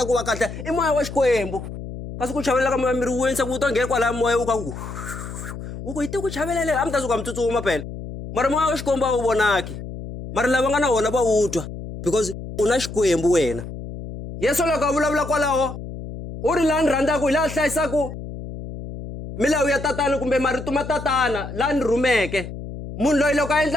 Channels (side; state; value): left; noise; hum, 10 dB below the sound